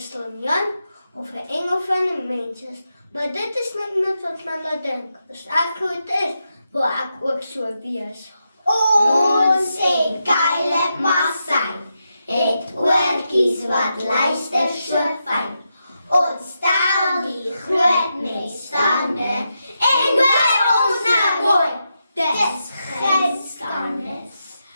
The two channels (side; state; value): both; inverted; correlation -0.86